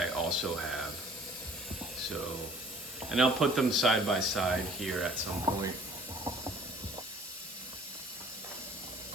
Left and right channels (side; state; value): both; normal; correlation 0.52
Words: also have. So, and I'll put them side by side here at some point.